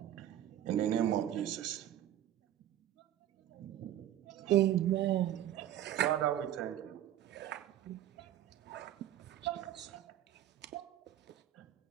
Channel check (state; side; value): quieter; left; 11.9 dB